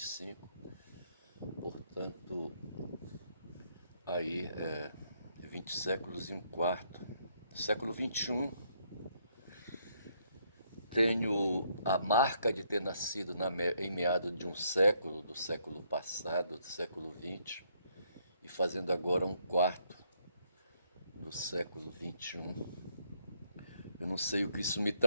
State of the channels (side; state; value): both; inverted; correlation -0.72